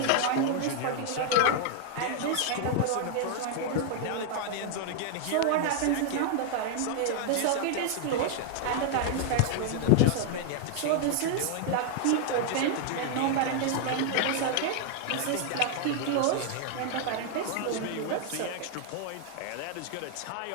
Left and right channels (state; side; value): different; both; correlation 0.00